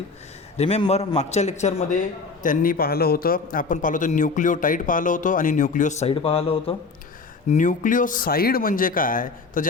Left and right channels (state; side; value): quieter; right; 4.4 dB